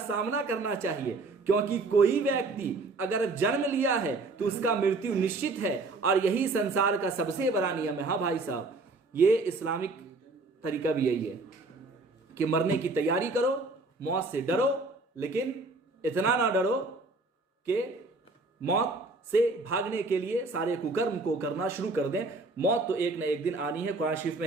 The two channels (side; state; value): left; quieter; 3.4 dB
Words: सामना करना चाहिए, क्योंकि कोई व्यक्ति अगर जन्म लिया है तो उसका मृत्यु निश्चित है, और यही संसार का सबसे बड़ा नियम है। हाँ भाई साहब, ये इस्लामिक तरीका भी यही है कि मरने की तैयारी करो, मौत से डरो, लेकिन इतना ना डरो कि मौत से भागने के लिए सारे कुकर्म को करना शुरू कर दें। मौत तो एक न एक दिन आनी है। कुरान शरीफ